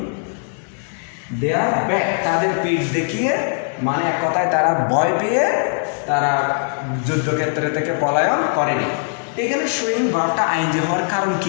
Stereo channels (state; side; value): silent; right; 60 dB below the other